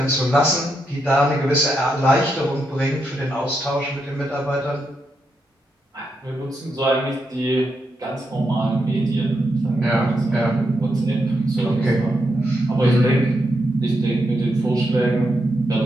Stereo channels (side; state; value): both; normal; correlation 0.82